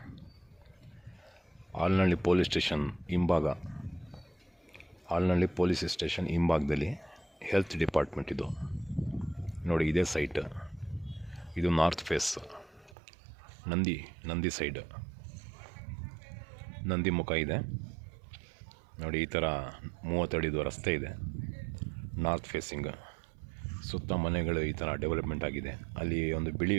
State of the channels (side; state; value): left; drops out; at 13.0 s